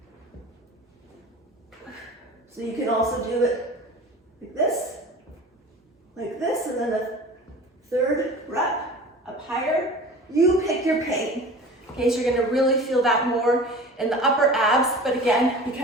So you can also do it like this, and then the third rep up higher. You pick your pain. Okay, so you're gonna really feel that more in the upper abs, but again,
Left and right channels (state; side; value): normal; both; correlation 0.39